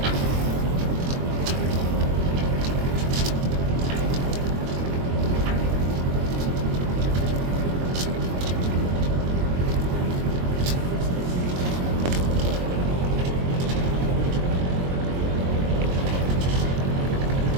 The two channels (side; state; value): left; late; 22 ms